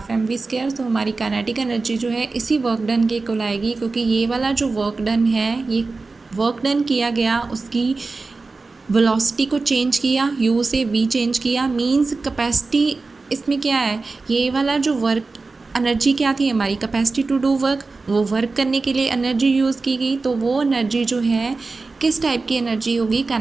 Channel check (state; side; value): quieter; left; 3.8 dB